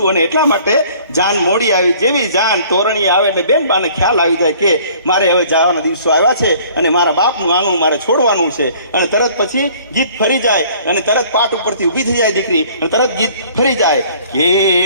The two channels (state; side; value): inverted; both; correlation -0.54